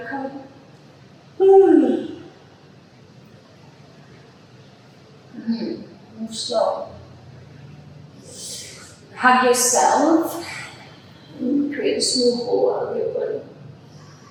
come. Move slow. Hug yourself and create a small ball out of your body.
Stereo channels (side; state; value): both; identical; correlation 1.00